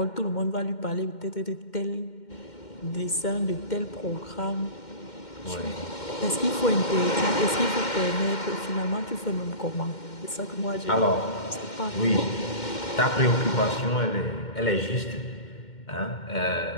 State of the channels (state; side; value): late; right; 2.1 ms